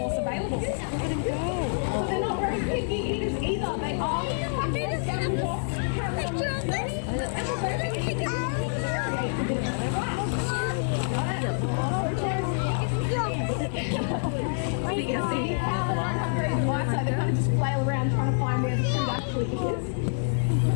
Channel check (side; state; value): right; silent; 60 dB below the other